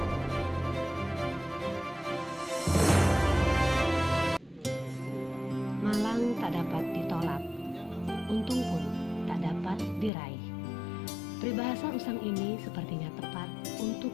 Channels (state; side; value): drops out; right; at 10.1 s